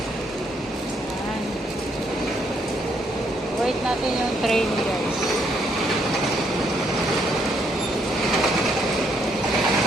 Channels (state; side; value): normal; both; correlation 0.72